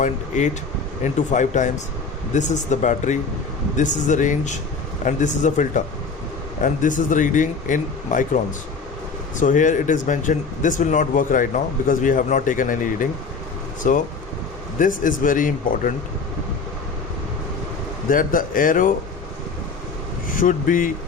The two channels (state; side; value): quieter; right; 4.6 dB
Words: into 5 times. This is the battery, this is the range, and this is the filter, and this is the reading in microns. So here it is mentioned. This will not work right now because we have not taken any reading. So this is very important. that the arrow should be